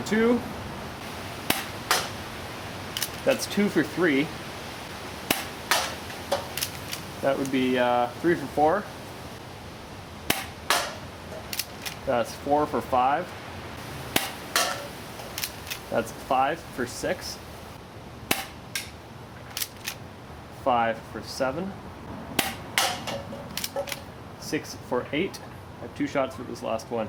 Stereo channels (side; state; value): both; identical; correlation 1.00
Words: 2. That's 2 for 3. That would be 3 for 4. That's 4 for 5. That's 5 for 6. 5 for 7, 6 for 8. I have 2 shots for this last one.